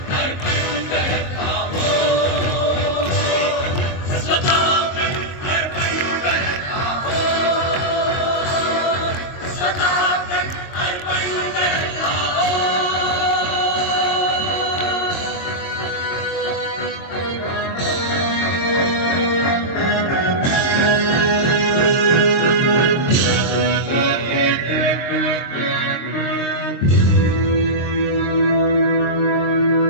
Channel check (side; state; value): right; late; 22 ms